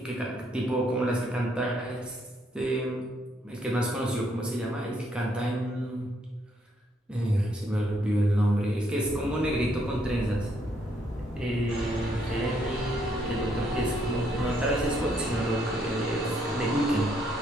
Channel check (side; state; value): both; normal; correlation 0.72